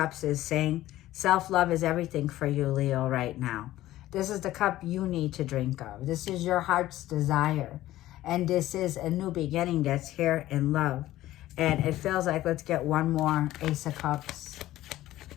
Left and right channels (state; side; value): quieter; right; 15.1 dB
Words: is saying, self-love is everything for you, Leo, right now. This is the cup you need to drink of. This is your heart's desire, and this is a new beginning that's here in love. And it feels like, let's get one more Ace of Cups.